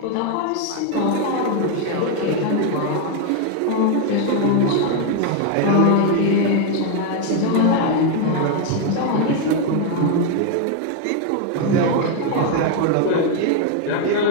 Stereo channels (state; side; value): different; both; correlation 0.01